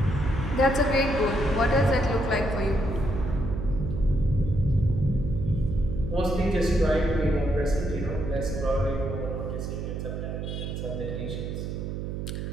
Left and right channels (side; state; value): right; noise; hum, 5 dB below the sound